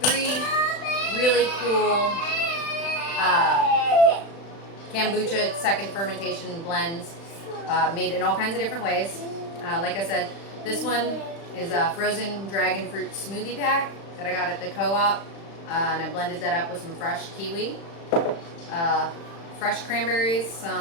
3 really cool kombucha second fermentation blends made in all kinds of different ways. Like I said, this one is a frozen dragon fruit smoothie pack that I got at the co-op, and I blended that up with some fresh kiwi, fresh cranberries,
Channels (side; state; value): right; late; 35 ms